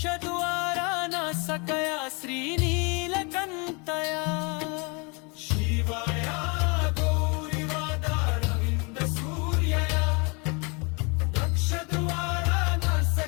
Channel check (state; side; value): quieter; right; 31.3 dB